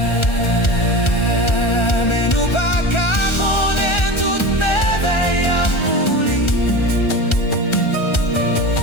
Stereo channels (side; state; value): right; late; 1.4 ms